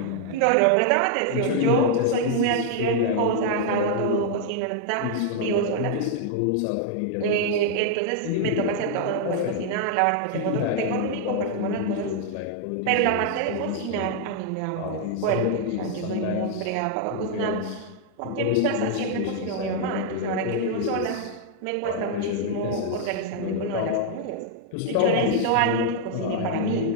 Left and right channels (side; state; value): both; different; correlation 0.00